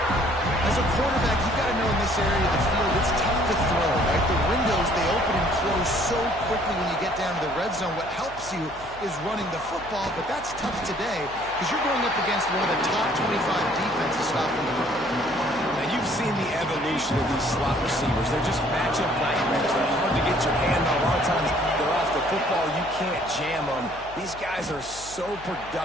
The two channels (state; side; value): noise; left; hum, 20 dB below the sound